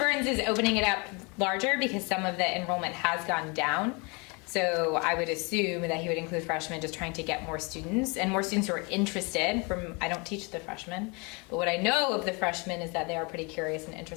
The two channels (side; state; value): right; quieter; 30.1 dB